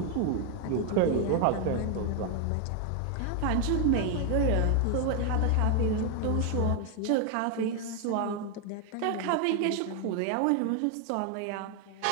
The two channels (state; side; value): different; both; correlation 0.01